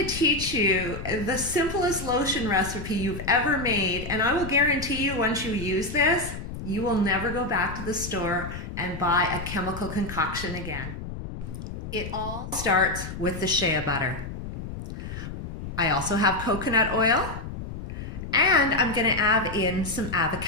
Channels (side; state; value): left; noise; rumble, 9 dB below the sound